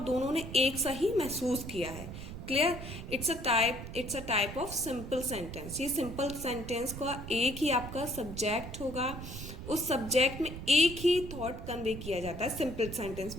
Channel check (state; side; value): noise; right; rumble, 9 dB below the sound